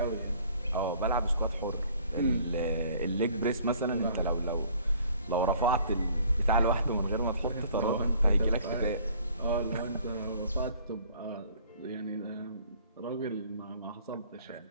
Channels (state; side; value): inverted; both; correlation -0.56